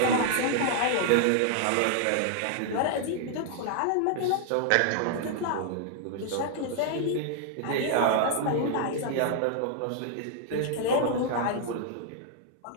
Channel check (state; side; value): different; both; correlation -0.01